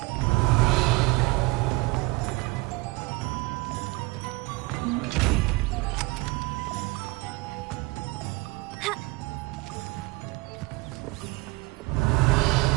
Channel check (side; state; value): left; quieter; 23.7 dB